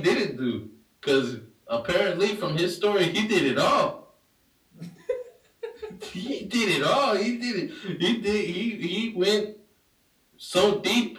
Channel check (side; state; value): both; identical; correlation 1.00